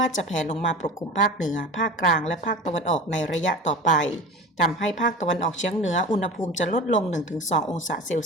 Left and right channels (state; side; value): normal; both; correlation 0.33